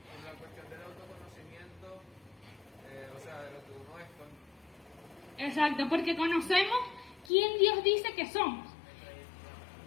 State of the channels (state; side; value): drops out; right; at 7.3 s